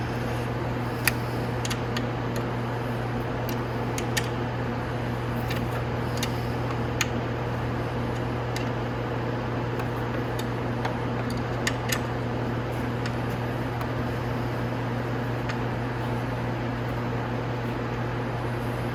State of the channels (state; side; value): identical; both; correlation 1.00